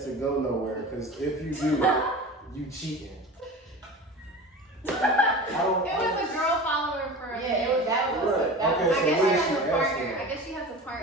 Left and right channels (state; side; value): normal; both; correlation 0.34